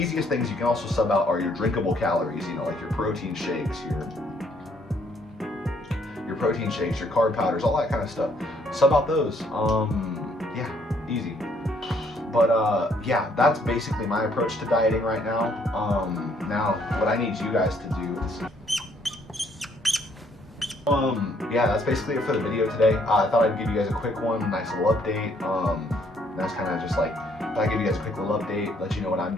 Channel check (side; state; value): both; normal; correlation 0.67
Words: things you can also sub out are your drinkable calories, you know, like your protein shakes, your carb powders, all that kind of stuff. Sub out those. Yeah, easy. But yeah, that's basically my approach to dieting right now. Now what I need you guys to do is yeah, that's basically it for the video today. I thought I'd give you guys a quick one, nice little update. That's kind of just like, I give you guys a quick little update, let you know what I'm